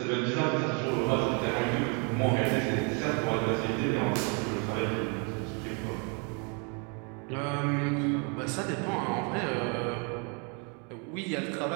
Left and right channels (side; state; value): left; quieter; 35.5 dB